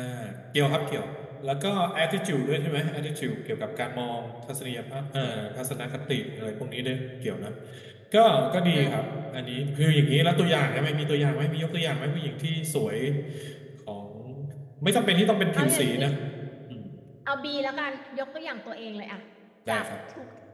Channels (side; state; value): both; identical; correlation 1.00